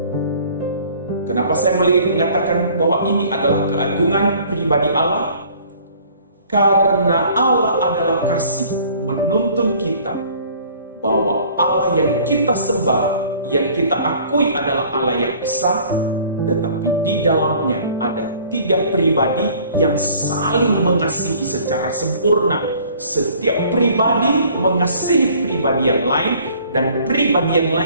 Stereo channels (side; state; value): both; inverted; correlation -0.53